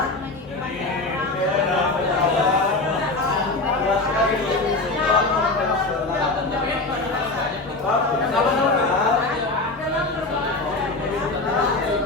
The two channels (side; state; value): right; quieter; 3.2 dB